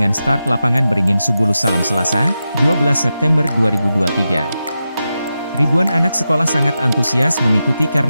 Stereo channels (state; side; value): inverted; both; correlation -0.90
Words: start lapangan Beringin Subulu Salam Selasa, 12 September 2023. Ribuan anak sekolah sangat antusias mengikuti